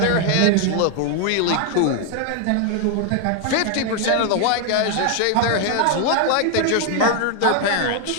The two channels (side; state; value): both; different; correlation 0.01